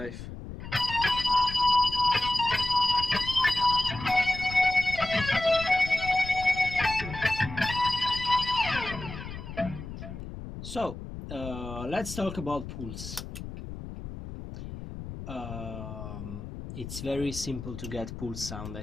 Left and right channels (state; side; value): noise; left; rumble, 10 dB below the sound